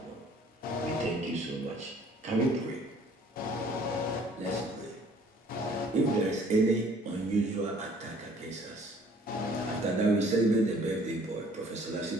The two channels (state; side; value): normal; both; correlation 0.56